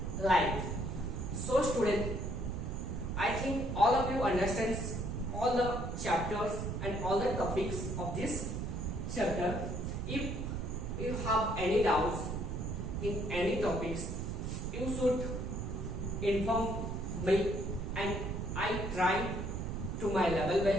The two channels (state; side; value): noise; right; rumble, 3 dB below the sound